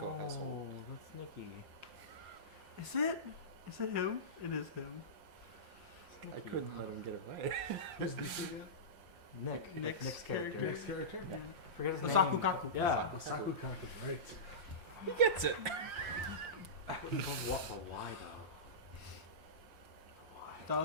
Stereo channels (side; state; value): left; late; 5.7 ms